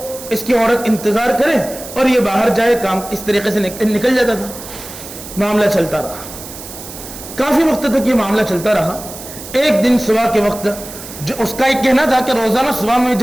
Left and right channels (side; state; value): right; noise; hiss, 13 dB below the sound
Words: اس کی عورت انتظار کرے اور یہ باہر جائے، کام اس طریقے سے نکل جاتا تھا. معاملہ چلتا رہا، کافی وقت تک یہ معاملہ چلتا رہا. ایک دن صبح کے وقت جو اس کا ایک کہنا تھا کہ روزانہ صبح میں